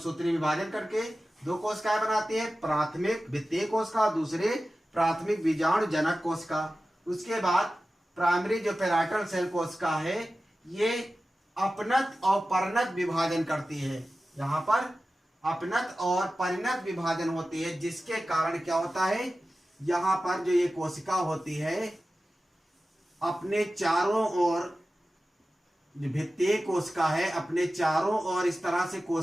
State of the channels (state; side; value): normal; both; correlation 0.95